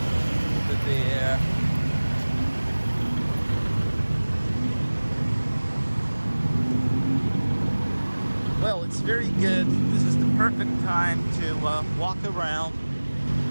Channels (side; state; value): both; inverted; correlation -1.00